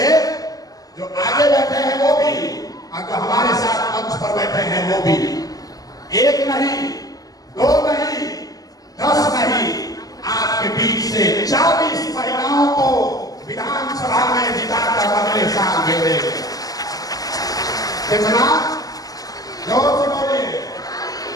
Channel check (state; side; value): late; right; 0.17 ms